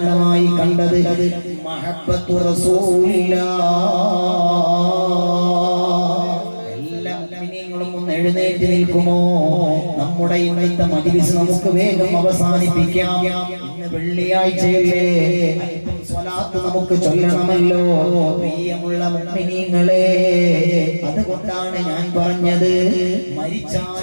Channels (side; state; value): both; inverted; correlation -1.00